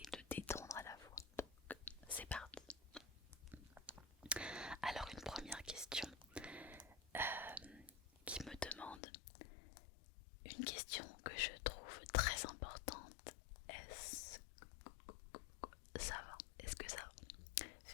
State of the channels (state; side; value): drops out; right; at 9.0 s